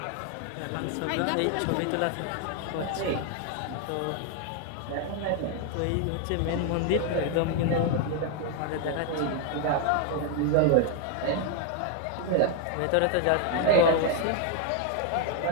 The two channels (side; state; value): both; different; correlation 0.00